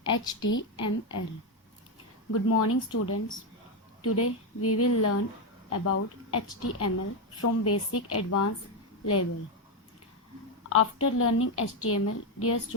HTML. Good morning, students. Today we will learn about HTML from basic advanced level. After learning HTML, dear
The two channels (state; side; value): normal; both; correlation 0.06